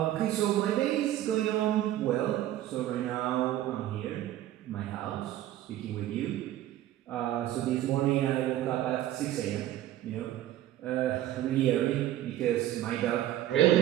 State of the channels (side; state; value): left; quieter; 13.4 dB